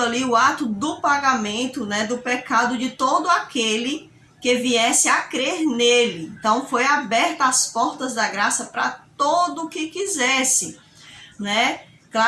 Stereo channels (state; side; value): identical; both; correlation 1.00